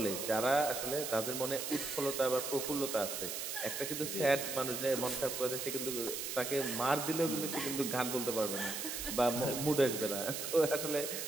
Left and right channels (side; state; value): right; noise; hiss, 4 dB below the sound